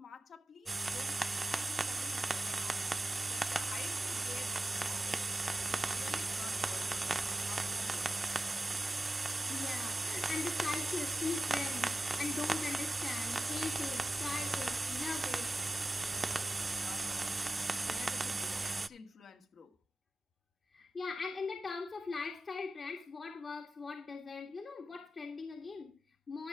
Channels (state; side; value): normal; both; correlation 0.94